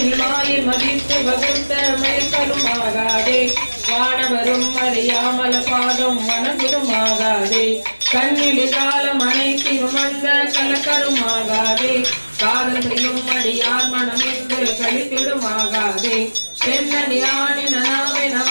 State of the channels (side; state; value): both; inverted; correlation -1.00